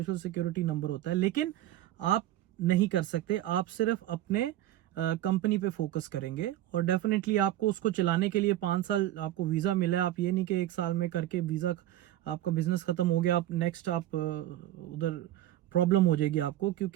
सिक्योरिटी नंबर होता है, लेकिन आप नहीं कर सकते। आप सिर्फ अपने कंपनी पे फोकस करेंगे और डेफिनेटली आपको उसको चलाने के लिए 5 साल आपको वीजा मिला है। आप ये नहीं कि 1 साल में करके वीजा आपका बिजनेस खत्म हो गया, आप नेक्स्ट आप उधर प्रॉब्लम हो जाएगी आपको,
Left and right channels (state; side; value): quieter; left; 13.8 dB